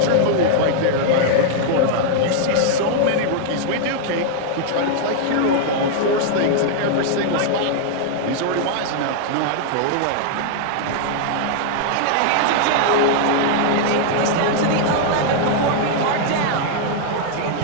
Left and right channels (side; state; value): both; different; correlation -0.01